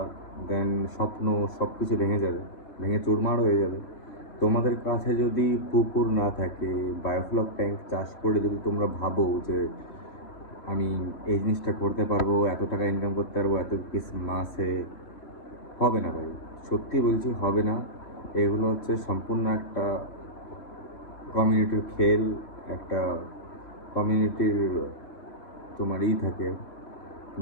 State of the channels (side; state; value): right; late; 3.1 ms